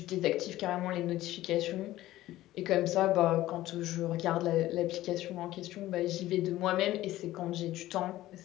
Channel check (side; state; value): right; quieter; 15.5 dB